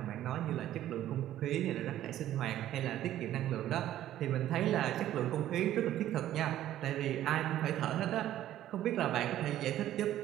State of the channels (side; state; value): left; quieter; 12.8 dB